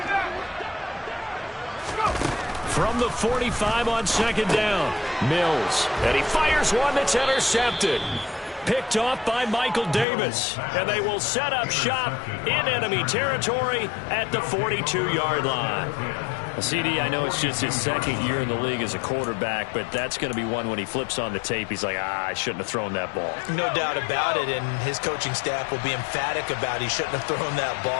From the 45 on 2nd down, Mills. And he fires one that's intercepted. Picked off by Michael Davis. And they will set up shop in enemy territory at the 42-yard line. CD, I know it's just his second year in the league as a quarterback, but that's going to be one when he flips on the tape, he's like, I shouldn't have thrown that ball. No doubt about it, and his coaching staff will be emphatic about he shouldn't have thrown that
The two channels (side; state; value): right; drops out; at 10.1 s